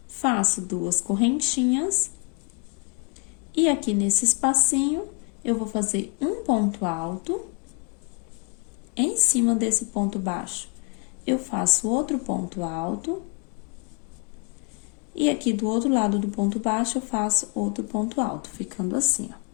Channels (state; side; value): quieter; right; 31.9 dB